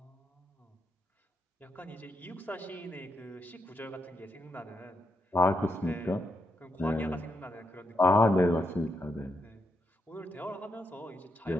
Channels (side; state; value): both; normal; correlation 0.82